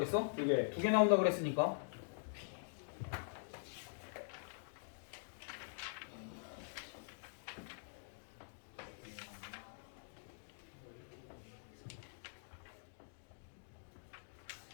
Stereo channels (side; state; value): right; silent; digital silence